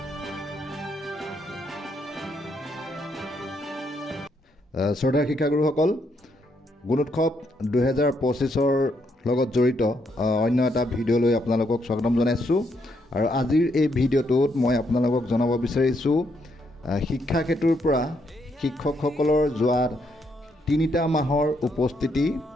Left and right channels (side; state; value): both; normal; correlation 0.76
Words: শ্ৰদ্ধাৰ শিক্ষাগুৰুসকল, গুণোৎসৱ 2025ৰ লগত জড়িত অন্য এটা ভিডিঅ'লৈ আপোনালোকক স্বাগতম জনাইছোঁ। আৰু আজিৰ এই ভিডিঅ'টোত মই আপোনালোকক জনাব বিচাৰিছোঁ শিক্ষাক্ষেত্ৰৰ পৰা শিক্ষকসকলৰ যোৱা 3টা মাহৰ উপস্থিতি